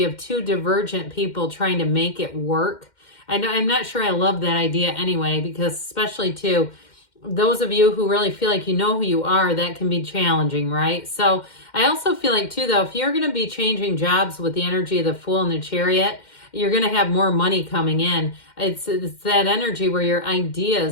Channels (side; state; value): right; late; 2.1 ms